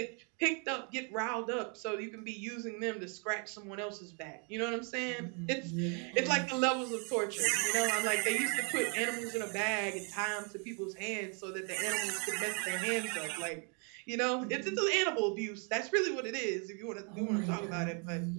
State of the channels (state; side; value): quieter; left; 37.4 dB